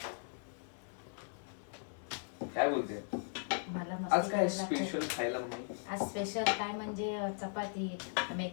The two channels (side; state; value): right; silent; digital silence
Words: काय बोलते? मला आज काय स्पेशल खायला मम्मी? आज स्पेशल काय म्हणजे चपाती,